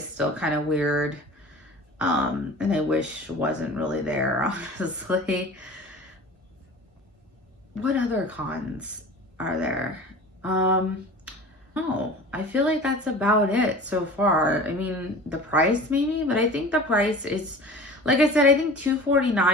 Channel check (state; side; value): normal; both; correlation 0.39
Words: still kind of weird, and I wish wasn't really there, honestly. What other cons are there? No, I feel like that's about it so far. I mean, the price maybe, but I think the price is, like I said, I think